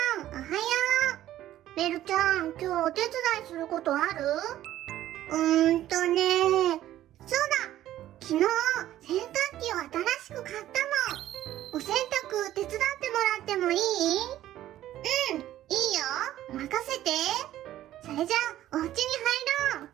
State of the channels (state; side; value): quieter; left; 13.3 dB